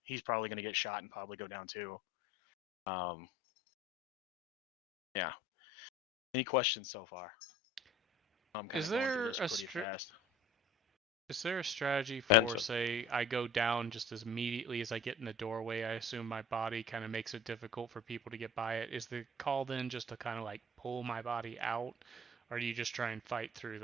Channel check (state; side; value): normal; both; correlation 0.46